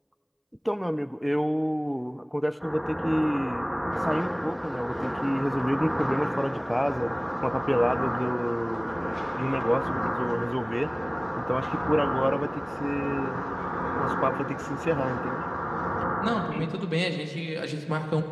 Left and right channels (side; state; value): both; identical; correlation 1.00